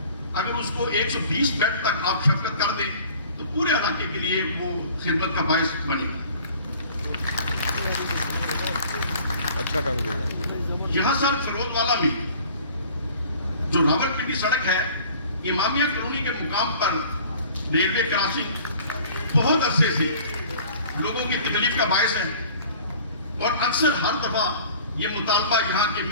اگر اس کو 120 بیڈ تک آپ شفقت کر دیں تو پورے علاقے کے لیے وہ خدمت کا باعث بنے گا۔ اچھا کام کیا۔ یہاں سر فیروز والا میں جو راولپنڈی سڑک ہے امامیہ کالونی کے مقام پر ریلوے کراسنگ بہت عرصے سے لوگوں کی تکلیف کا باعث ہے، اور اکثر ہر دفعہ یہ مطالبہ یہاں کے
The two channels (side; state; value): both; inverted; correlation -0.48